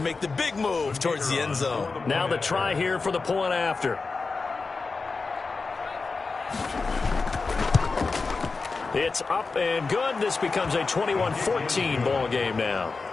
make the big move towards the end zone. Now the try here for the point after. It's up and good. This becomes a 21-14 ball game now.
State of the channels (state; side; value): quieter; right; 4.2 dB